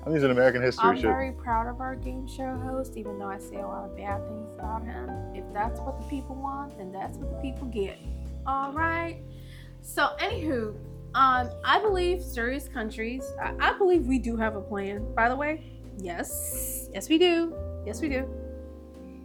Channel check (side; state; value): both; identical; correlation 1.00